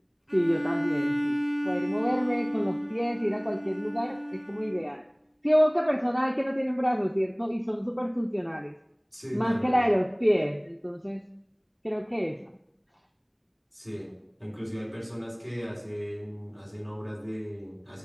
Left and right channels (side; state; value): both; identical; correlation 1.00